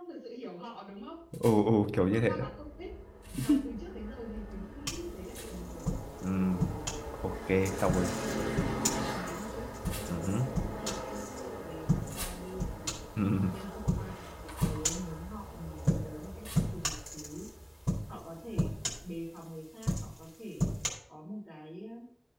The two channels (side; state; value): both; identical; correlation 1.00